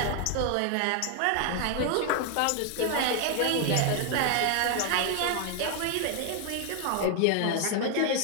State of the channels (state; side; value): different; both; correlation 0.00